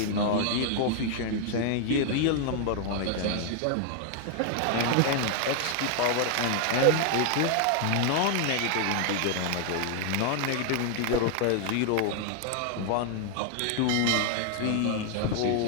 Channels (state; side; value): different; both; correlation 0.00